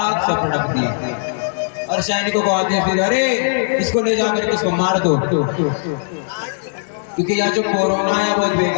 से पटक दिया और सैनिकों को आदेश दिया, अरे इसको ले जाकर के इसको मार दो, क्योंकि यह जो कोरोना है बहुत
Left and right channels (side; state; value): right; silent; digital silence